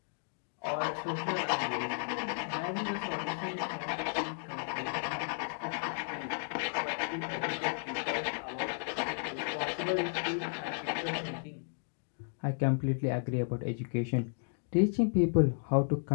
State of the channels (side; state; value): right; silent; digital silence